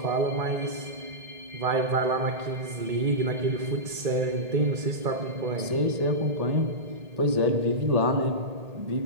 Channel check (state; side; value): late; left; 1.8 ms